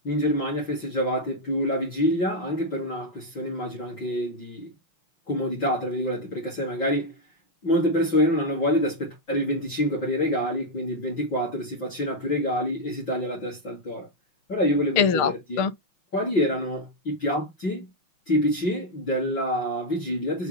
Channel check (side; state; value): right; late; 5.9 ms